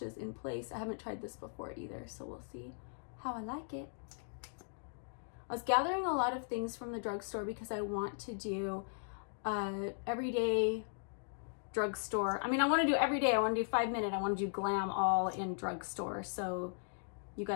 in place. I haven't tried this before either, so we'll see how I like it. I was gathering a lot of things from the drugstore because I want to do everyday drugstore. I mean, I want to do every day. I want to do 5 minute. I want to do glam all in drugstore. So you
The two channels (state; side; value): silent; right; digital silence